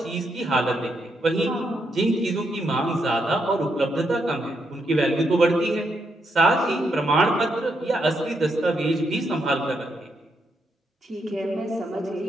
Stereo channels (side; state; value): both; normal; correlation 0.79